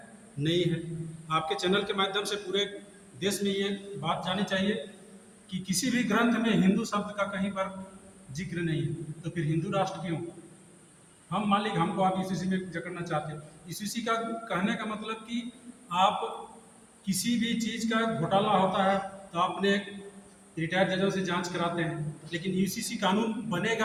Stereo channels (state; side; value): identical; both; correlation 1.00